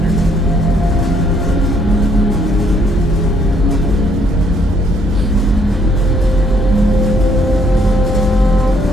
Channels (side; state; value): both; normal; correlation 0.67